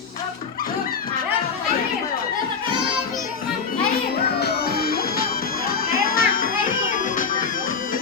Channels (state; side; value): quieter; right; 5.6 dB